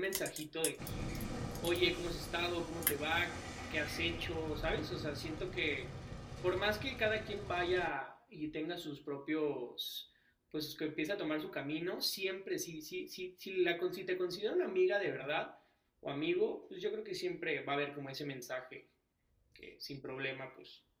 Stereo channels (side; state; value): both; identical; correlation 1.00